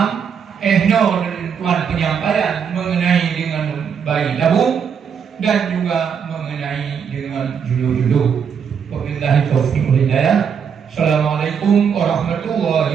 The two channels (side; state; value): left; quieter; 7.1 dB